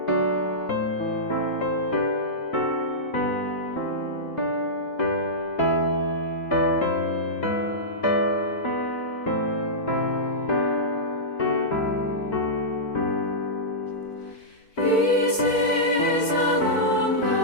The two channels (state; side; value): late; right; 4.5 ms